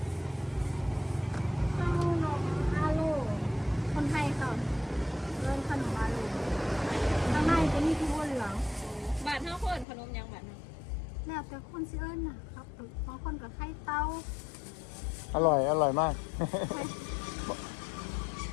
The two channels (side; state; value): right; drops out; at 9.9 s